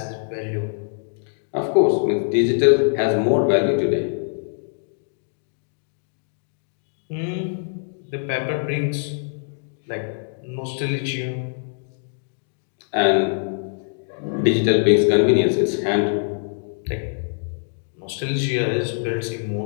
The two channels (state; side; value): silent; right; digital silence